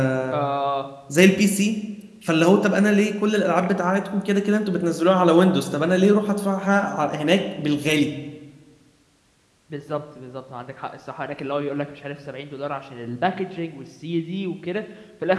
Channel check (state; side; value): identical; both; correlation 1.00